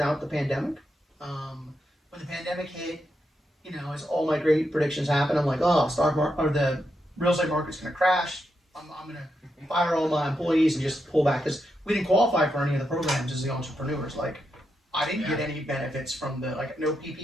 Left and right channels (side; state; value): both; normal; correlation 0.84